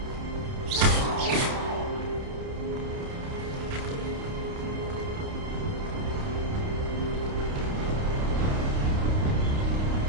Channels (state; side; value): late; left; 29 ms